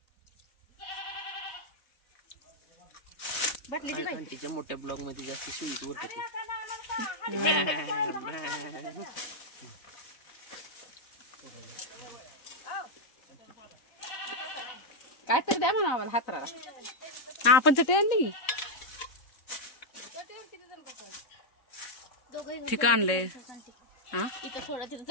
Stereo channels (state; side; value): late; right; 3.8 ms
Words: तिच्या मोठ्या ब्लॉग मध्ये जास्त स्वीट उरत काय तरी द्या म्हणा आम्हाला हातराला. हा आपण चटई आणली ठीक आणले. हा इथं थोडा तिथं